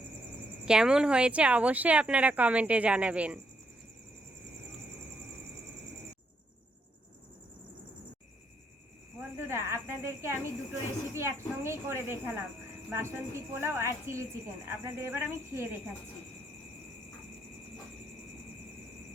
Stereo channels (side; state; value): both; normal; correlation 0.76